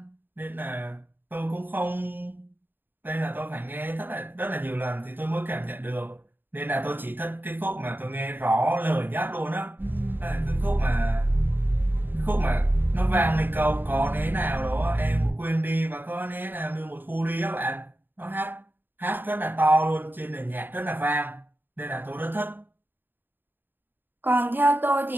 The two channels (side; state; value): left; late; 0.094 ms